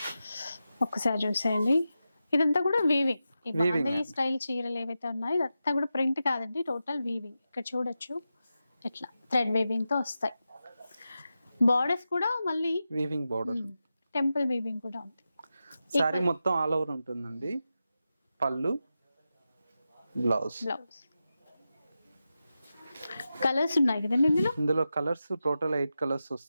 ఒక్కసారి చూసేయండి, ఇదంతా కూడా వీవింగ్. ఈ బాందిని స్టైల్ చీరలు ఏవైతే ఉన్నాయో ఇదంతా కూడా ప్రింట్ కాదండి, టోటల్ వీవింగ్. ఇక్కడ చూడొచ్చు ఎట్లా థ్రెడ్ వీవింగ్ తో వస్తాయి. బార్డర్స్ కూడా మళ్ళీ వీవింగ్ బార్డర్, టెంపుల్ వీవింగ్ కూడా ఉంది. సారీ మొత్తం ఆల్ ఓవర్ ఉంటుందండి. పళ్ళు, బ్లౌజ్. కలర్స్ ఉన్నాయి కదండి ఇందులో కలర్స్ టోటల్ 8 కలర్స్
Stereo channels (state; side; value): inverted; both; correlation -0.91